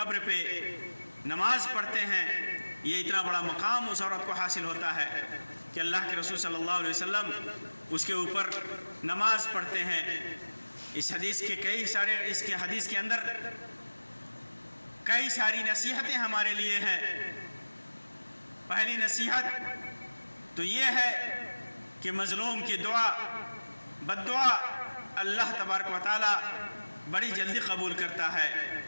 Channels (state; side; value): inverted; both; correlation -1.00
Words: پہ نماز پڑھتے ہیں۔ یہ اتنا بڑا مقام اس عورت کو حاصل ہوتا ہے کہ اللہ کے رسول صلی اللہ علیہ وسلم اس کے اوپر نماز پڑھتے ہیں۔ اس حدیث کے اندر کئی ساری نصیحتیں ہمارے لیے ہیں۔ پہلی نصیحت تو یہ ہے کہ مظلوم کی دعا، بد دعا اللہ تبارک و تعالی بڑی جلدی قبول کرتا ہے۔